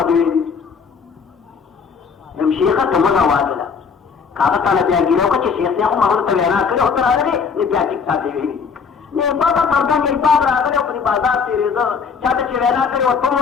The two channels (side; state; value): right; quieter; 5.9 dB